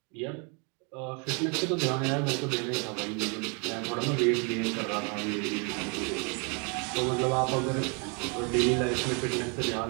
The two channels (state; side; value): quieter; left; 34.4 dB